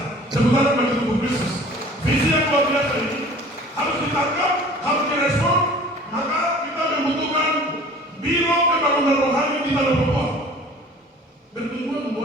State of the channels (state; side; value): normal; both; correlation 0.46